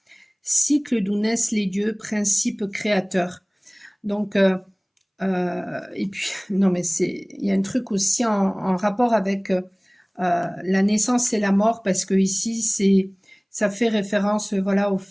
cycle d'où naissent les dieux, principe créateur. Donc, et puis, non mais il y a un truc aussi en rapport avec la naissance et la mort, parce que ici, ça fait référence, voilà, au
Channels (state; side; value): identical; both; correlation 1.00